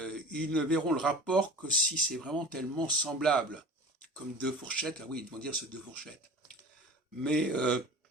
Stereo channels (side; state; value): both; normal; correlation 0.38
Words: ne verront le rapport que si c'est vraiment tellement semblable, comme deux fourchettes. Ah oui, ils vont dire c'est deux fourchettes. Mais